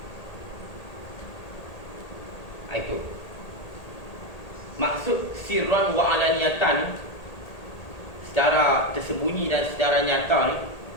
Itu. Maksud sirran wa alaniyatan, secara tersembunyi dan secara nyata ni,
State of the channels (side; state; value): right; late; 1.8 ms